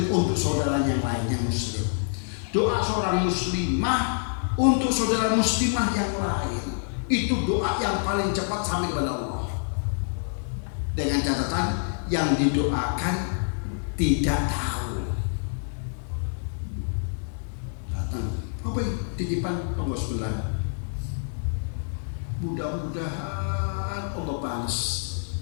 untuk saudaranya yang lain yang muslim. Doa seorang muslimah untuk saudara muslimah yang lain. Itu doa yang paling cepat sampai kepada Allah. Dengan catatan yang didoakan tidak tahu. Datang, apa ini? Titipan Allah sebelah. Mudah-mudahan Allah balas.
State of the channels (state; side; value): silent; right; digital silence